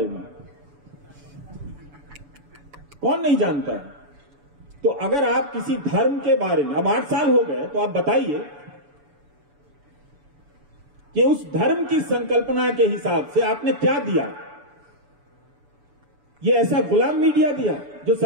में, कौन नहीं जानता है? तो अगर आप किसी धर्म के बारे में, अब 8 साल हो गए, तो आप बताइए कि उस धर्म की संकल्पना के हिसाब से आपने क्या दिया? ये ऐसा गुलाम मीडिया दिया जो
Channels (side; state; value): left; late; 7.0 ms